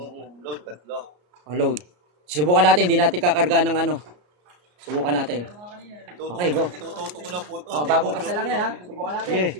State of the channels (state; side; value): late; left; 33 ms